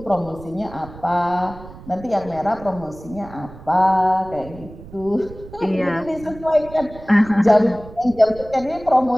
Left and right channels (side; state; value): right; noise; rumble, 17 dB below the sound